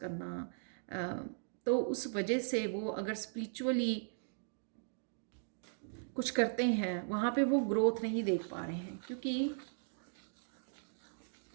तो उस वजह से वो अगर स्पिरिचुअली कुछ करते हैं, वहाँ पे वो ग्रोथ नहीं देख पा रहे हैं,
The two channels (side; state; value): left; silent; digital silence